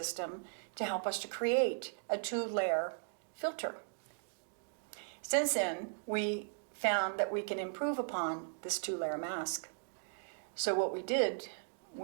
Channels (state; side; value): silent; left; digital silence